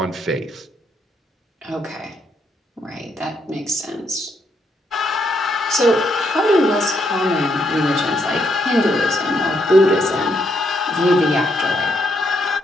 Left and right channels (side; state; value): both; normal; correlation 0.76